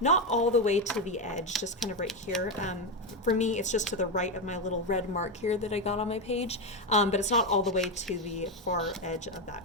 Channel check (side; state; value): both; normal; correlation 0.10